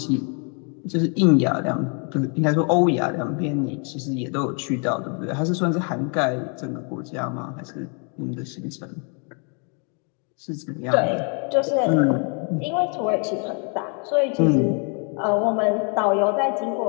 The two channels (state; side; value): quieter; right; 38.5 dB